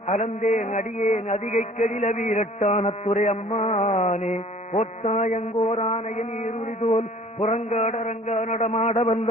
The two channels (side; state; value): both; normal; correlation 0.51